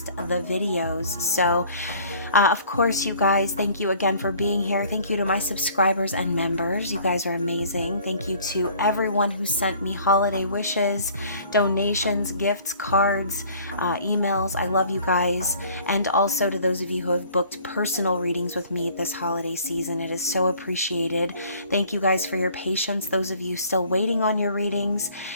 the videos. So of course, you guys, thank you again for being here. Thank you to my subscribers and members. You guys are amazing. Thank you to everyone who sent me holiday wishes, donations, gifts, cards, emails. I love you guys. And also to those of you who have booked personal readings with me this holiday season. It is so appreciated. Thank you guys for your patience. Those of you still waiting on your readings.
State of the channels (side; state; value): both; inverted; correlation -0.53